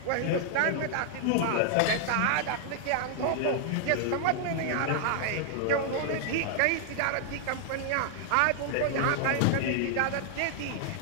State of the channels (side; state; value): both; different; correlation 0.00